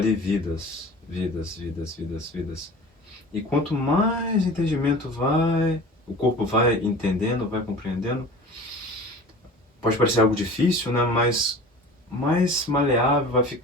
vidas, vidas. E quanto mais entendimento o corpo vai entendendo, vai compreendendo, pode parecer algo difícil, né? Mas mais maleável vai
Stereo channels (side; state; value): both; normal; correlation 0.40